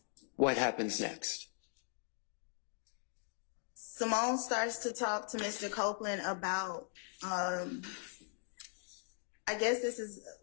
What happens next? Simone starts to talk to Mr. Copeland about, I guess this is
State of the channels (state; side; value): silent; right; 51 dB below the other